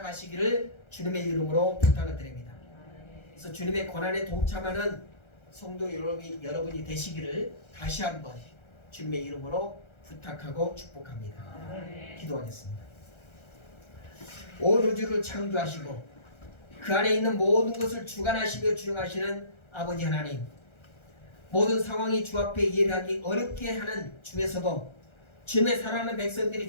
주님의 이름으로 부탁을 드립니다. 그래서 주님의 고난에 동참하는 성도 여러분이 되시기를 다시 한번 주님의 이름으로 부탁하고 축복합니다. 기도하겠습니다. 온 우주를 창조하시고 그 안에 있는 모든 것을 주관하시며 주영하시는 아버지 하나님, 모든 상황이 주 앞에 예배하기 어렵게 하는 중에서도 주님의 사랑하는 백성들이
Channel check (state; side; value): late; right; 1.3 ms